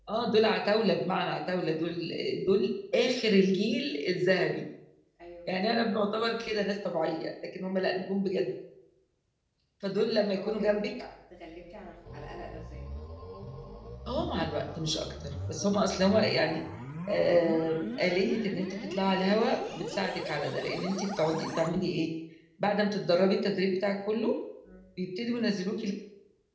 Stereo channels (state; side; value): identical; both; correlation 1.00